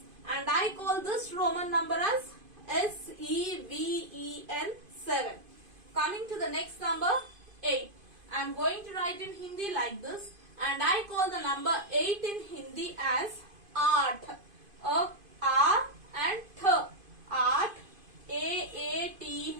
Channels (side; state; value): left; late; 2.5 ms